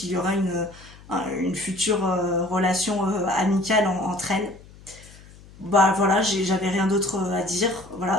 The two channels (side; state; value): left; noise; hum, 22 dB below the sound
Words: y aura une future relation amicale entre elles. Voilà, j'avais rien d'autre à dire.